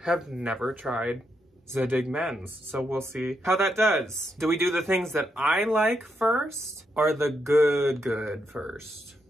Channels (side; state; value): both; normal; correlation 0.80